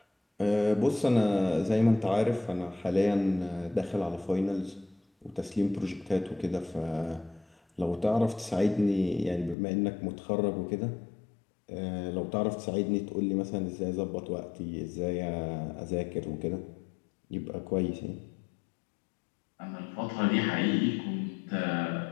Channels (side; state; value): right; drops out; at 9.6 s